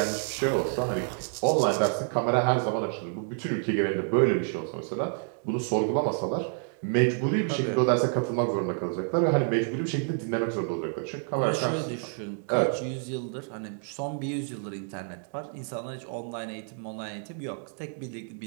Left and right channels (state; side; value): silent; left; 56 dB below the other